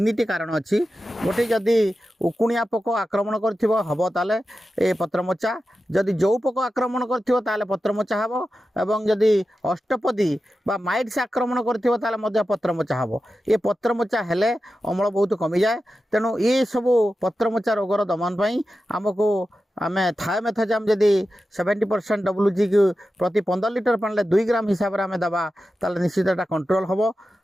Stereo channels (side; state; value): both; normal; correlation 0.92